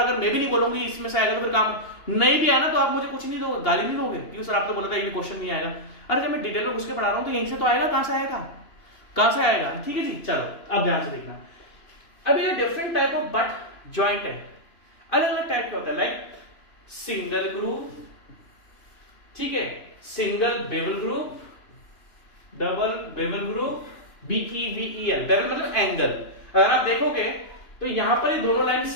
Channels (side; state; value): right; late; 2.9 ms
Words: मैं भी नहीं बोलूंगी इसमें से आएगा तो फिर काम नहीं भी आना तो आप मुझे कुछ नहीं दोगे, गाली नहीं दोगे कि सर आप तो बोला था ये क्वेश्चन नहीं आएगा। अरे जब मैं डिटेल में घुस के पढ़ा रहा हूं तो यहीं से तो आएगा, कहां से आएगा, कहां से आएगा, ठीक है जी। चलो अब ध्यान से देखना, अभी ये different type of but joint है, अलग अलग टाइप का होता है, लाइक सिंगल ग्रूव, ठीक है, single bevel groove, double bevel groove, BEVEL, bevel मतलब एंगल। अगर आप देखोगे तो यहां पर ये दोनों लाइन